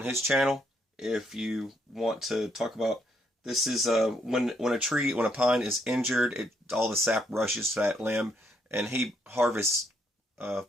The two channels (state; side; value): normal; both; correlation 0.73